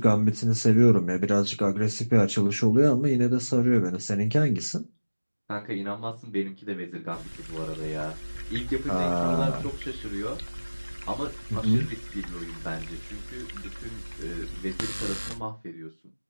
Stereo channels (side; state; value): both; inverted; correlation -1.00